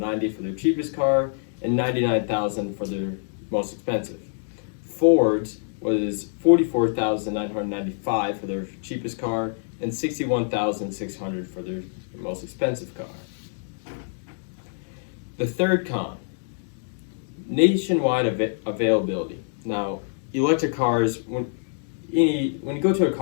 for their cheapest car and $99,000 for their most expensive. Ford's was $44,995 for their cheapest car and $61,600 for their most expensive car. The third con, nationwide availability. Now, electric cars, when you go to a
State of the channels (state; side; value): silent; right; digital silence